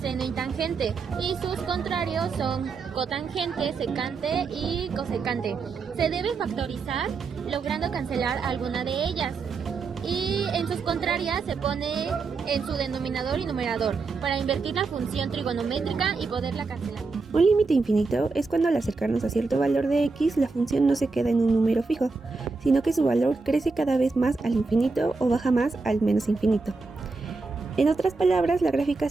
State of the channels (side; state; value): left; quieter; 4.2 dB